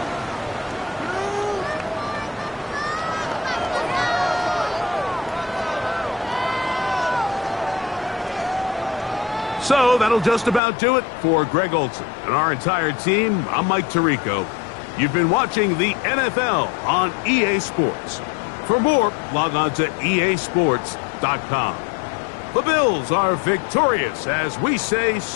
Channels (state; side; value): drops out; right; at 10.6 s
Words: So that'll just about do it for Greg Olson and our entire team. I'm Mike Tirico. You've been watching the NFL on EA Sports. For more, log on to easports.com. The Bills are victorious as we say